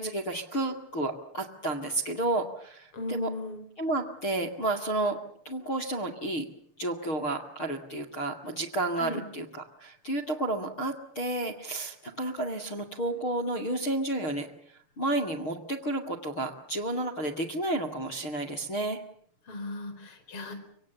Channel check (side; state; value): right; late; 6.7 ms